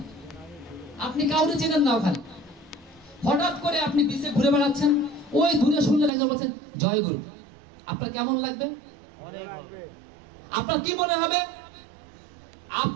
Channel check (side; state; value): left; drops out; at 6.1 s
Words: আপনি কাউকে চেনেন না, ওখানে হঠাৎ করে আপনি বিচে ঘুরে বেড়াচ্ছেন, ওই দূরে শুনলেন একজন বলছেন জয় গুরু। আপনার কেমন লাগবে? আপনার কি মনে হবে?